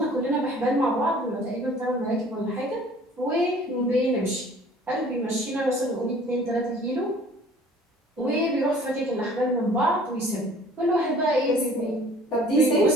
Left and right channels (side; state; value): both; normal; correlation 0.51